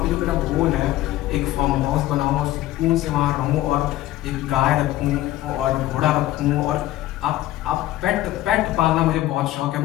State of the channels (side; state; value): right; quieter; 15.3 dB